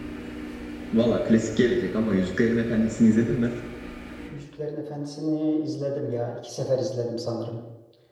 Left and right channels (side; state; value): both; identical; correlation 1.00